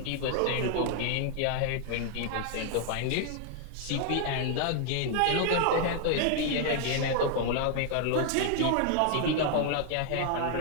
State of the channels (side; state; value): both; different; correlation 0.00